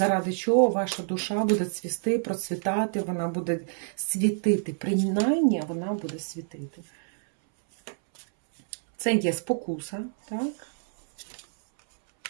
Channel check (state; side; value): silent; left; 60 dB below the other